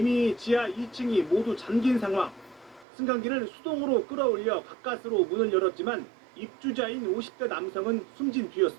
지하 2층이 모두 잠긴 상황. 승강기를 수동으로 끌어올려 가까스로 문을 열었지만 입주자인 50대 남성은 숨진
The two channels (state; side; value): drops out; left; at 2.9 s